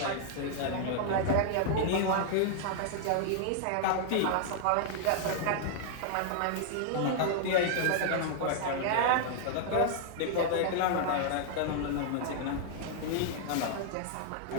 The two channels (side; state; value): both; different; correlation -0.01